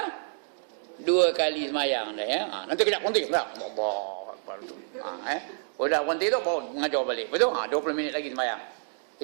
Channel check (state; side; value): silent; left; digital silence